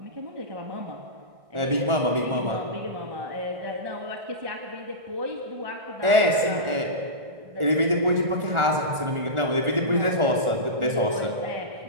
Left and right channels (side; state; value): left; late; 1.4 ms